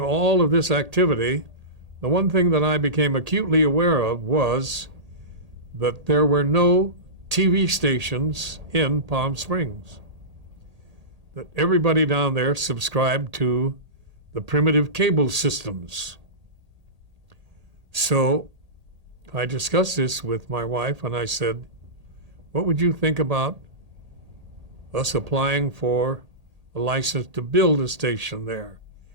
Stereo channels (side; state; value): left; late; 1.8 ms